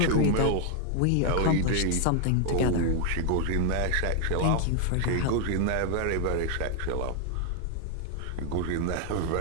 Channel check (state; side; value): different; both; correlation 0.00